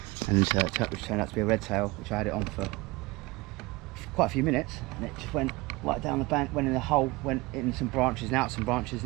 and which turned out to be a red tail, which I had it on for quite a few minutes, and it just went right down the bank, went in the hole, went in some branches and out some branches,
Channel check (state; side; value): quieter; left; 22.7 dB